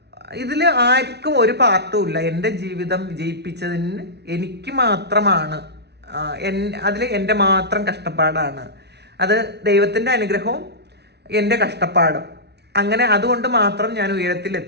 ഇതിൽ ആർക്കും ഒരു പാർട്ടും ഇല്ല. എൻ്റെ ജീവിതം വിജയിപ്പിച്ചതിന് എനിക്ക് മാത്രമാണ്, അതിൽ എൻ്റെ മാത്രം കഷ്ടപ്പാടാണ്. അത് ദൈവത്തിൻ്റെ അനുഗ്രഹവും എൻ്റെ കഷ്ടപ്പാടും. അങ്ങനെ അതുകൊണ്ട് മാത്രം ഞാൻ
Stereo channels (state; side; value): late; left; 0.49 ms